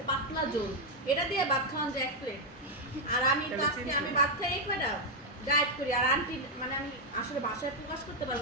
পাতলা ঝোল এটা দিয়ে ভাত খাওয়া যায় 1 প্লেট আর আমি তো আজকে আমি ভাত খাই এই কয়টা ডায়েট করি আর আন্টি মানে আমি আসলে ভাষায় প্রকাশ করতে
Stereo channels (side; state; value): both; normal; correlation 0.00